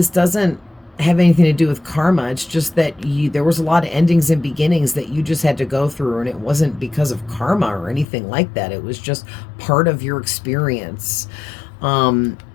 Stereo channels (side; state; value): right; drops out; at 8.1 s